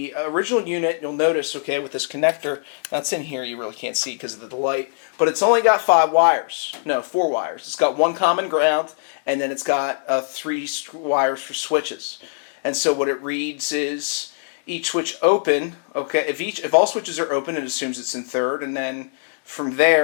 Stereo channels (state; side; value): silent; right; digital silence